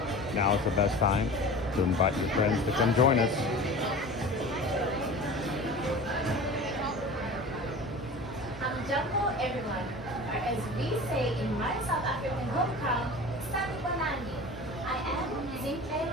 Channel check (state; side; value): normal; both; correlation 0.36